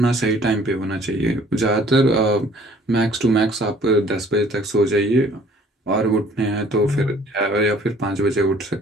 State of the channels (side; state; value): both; normal; correlation 0.55